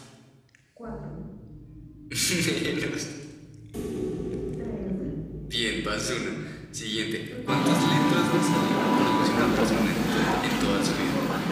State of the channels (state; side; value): identical; both; correlation 1.00